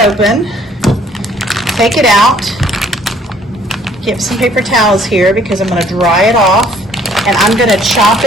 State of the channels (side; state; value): both; normal; correlation 0.60